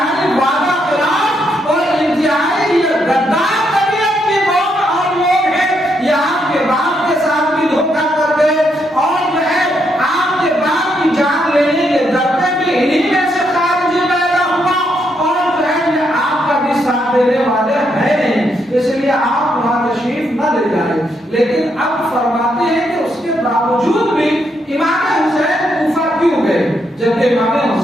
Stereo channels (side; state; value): both; normal; correlation 0.77